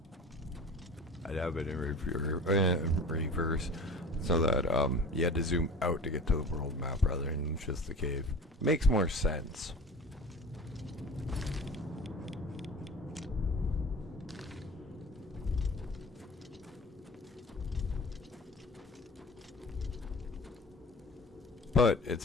I'd have it in reverse so that you had to zoom out to get to the world map rather than just the cave. Makes more sense. But it's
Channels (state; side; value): normal; both; correlation 0.39